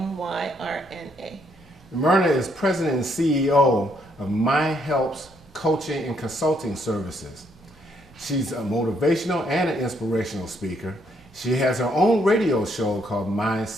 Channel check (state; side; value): normal; both; correlation 0.72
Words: Myrna is president and CEO of My Helps Coaching and Consulting Services. She's a motivational and an inspirational speaker. She has her own radio show called